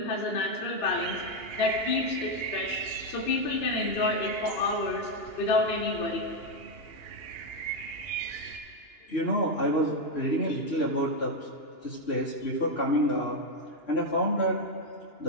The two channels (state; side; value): late; right; 2.9 ms